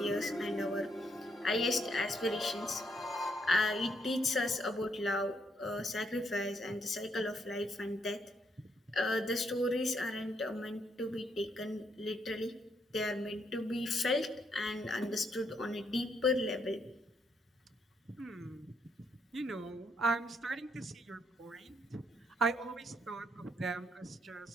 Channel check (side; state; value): both; normal; correlation 0.75